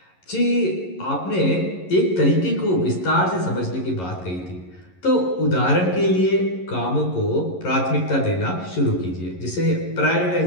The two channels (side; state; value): right; late; 11 ms